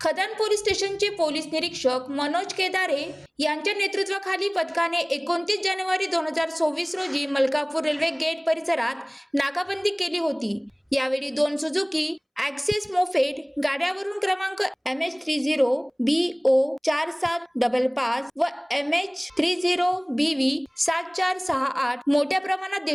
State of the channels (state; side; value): identical; both; correlation 1.00